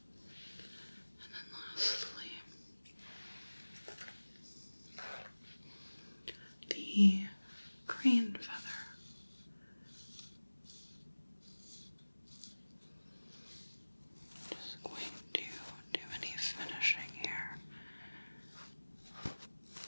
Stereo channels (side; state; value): both; inverted; correlation -1.00